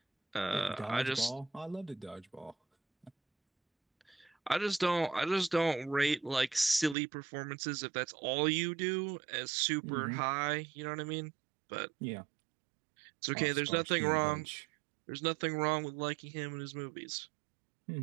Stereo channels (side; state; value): left; drops out; at 7.0 s